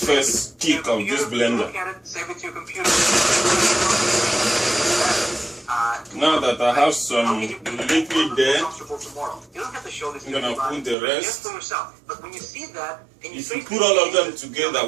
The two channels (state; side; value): drops out; left; at 11.0 s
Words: first kick of this blender. Save it to your computer. Now that I have some liquid there, I'm gonna put the rest. If you put all of them together